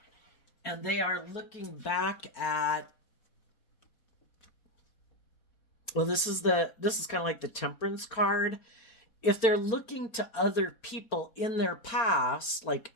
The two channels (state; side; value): late; right; 4.4 ms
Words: and they are looking back at, well, this is kind of like the temperance card. If they're looking to other people in their past, like,